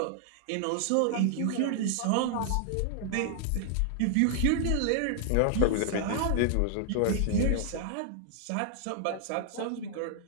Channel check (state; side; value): different; both; correlation 0.00